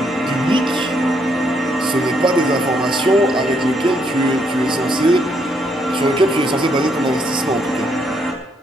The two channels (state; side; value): normal; both; correlation 0.73